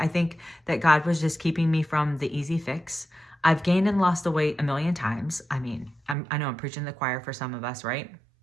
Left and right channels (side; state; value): left; drops out; at 6.2 s